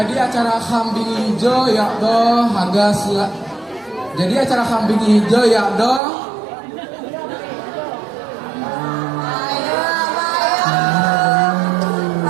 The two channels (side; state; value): left; drops out; at 6.0 s